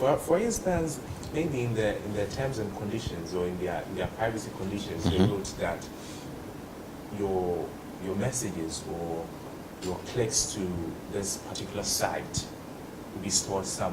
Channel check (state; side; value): identical; both; correlation 1.00